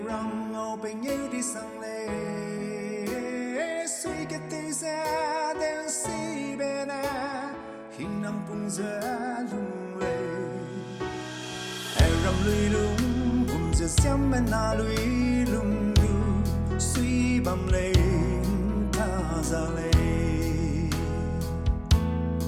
ram ngeu PENGEU DISANG lên suy cái tê ra đen si bên à hình nằm cùng giờ lung lê ram lui lung cùng giờ xem bên na lui lung lu suy bầm lê ta ra lê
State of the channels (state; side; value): identical; both; correlation 1.00